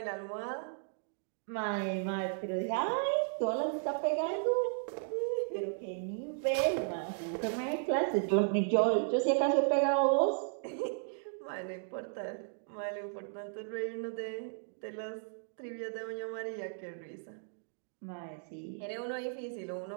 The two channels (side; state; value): left; silent; digital silence